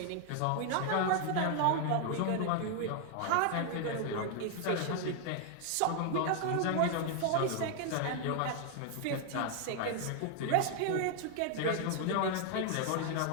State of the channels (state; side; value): different; both; correlation 0.00